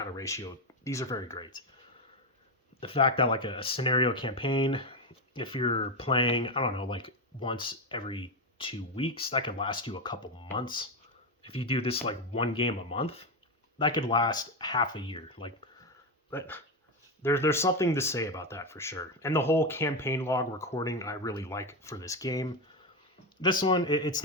of ratio. These are very great. The fact that like a scenario campaign, if you're playing, I don't know, like once every 2 weeks, that could last you a couple months. If you do this like one game a month, that could last half a year. Like, but there's something to say about that for sure. And the whole campaign log recording I really like for this game. This one, it's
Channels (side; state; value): both; normal; correlation 0.11